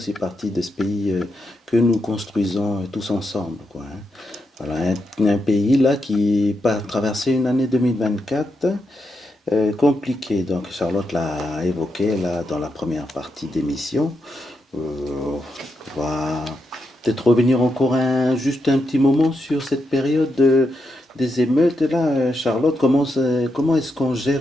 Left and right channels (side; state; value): both; normal; correlation 0.84